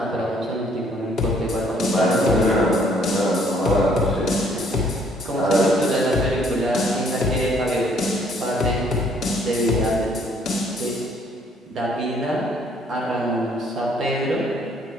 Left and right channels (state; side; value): normal; both; correlation 0.63